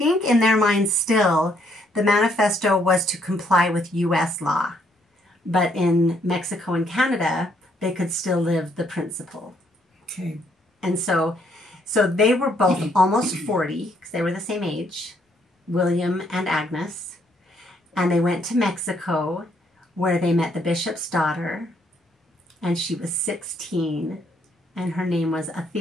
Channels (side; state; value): both; normal; correlation 0.70